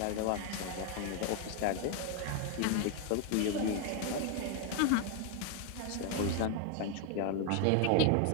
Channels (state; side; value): different; both; correlation 0.01